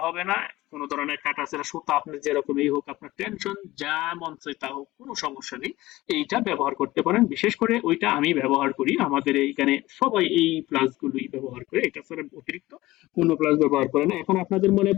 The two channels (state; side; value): quieter; right; 18.1 dB